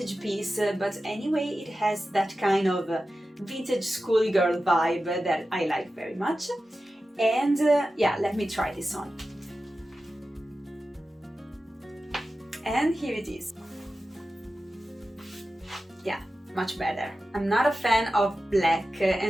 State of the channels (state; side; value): normal; both; correlation 0.93